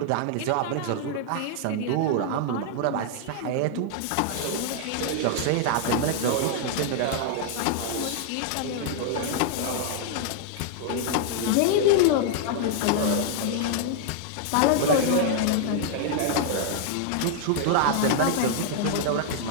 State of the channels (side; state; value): both; different; correlation 0.00